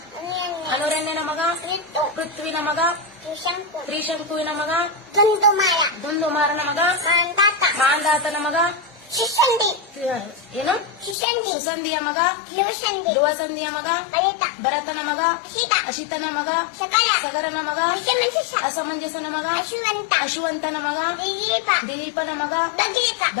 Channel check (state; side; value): drops out; right; at 11.2 s